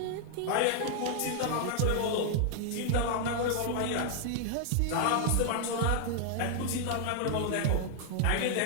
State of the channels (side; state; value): both; different; correlation 0.00